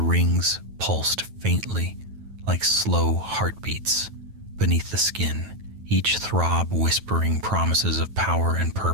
rings pulsed faintly, like slow heartbeats beneath the skin, each throb whispering promises of power and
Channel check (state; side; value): late; left; 9.2 ms